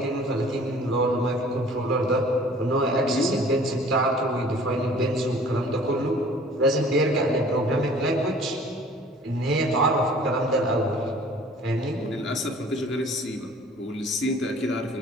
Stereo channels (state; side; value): normal; both; correlation 0.50